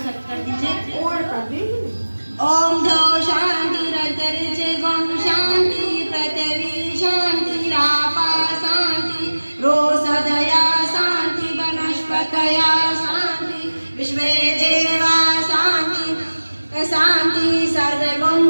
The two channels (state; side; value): inverted; both; correlation -1.00